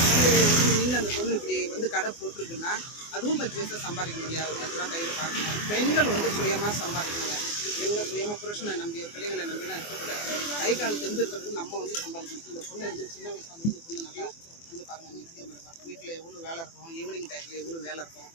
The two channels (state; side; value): late; right; 24 ms